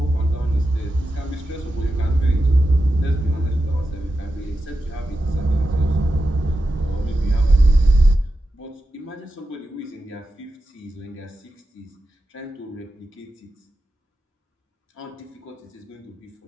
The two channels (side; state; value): both; normal; correlation 0.90